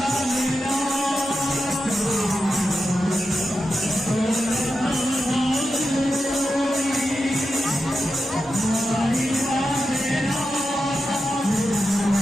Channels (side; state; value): both; normal; correlation 0.89